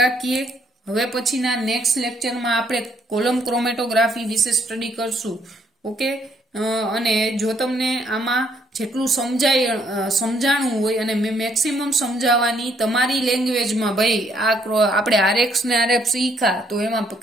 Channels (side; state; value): both; normal; correlation 0.69